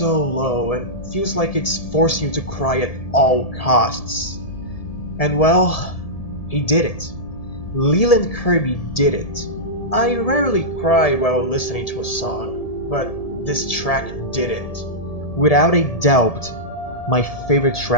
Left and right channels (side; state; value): right; late; 1.7 ms